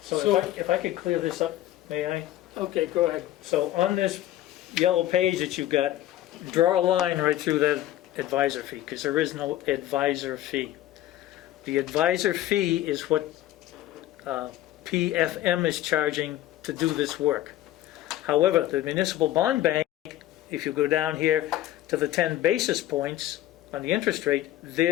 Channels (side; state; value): right; quieter; 14.0 dB